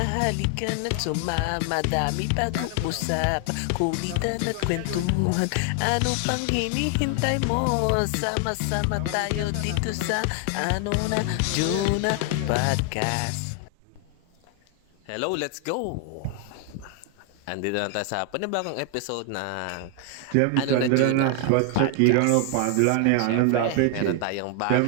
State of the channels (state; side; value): different; both; correlation 0.00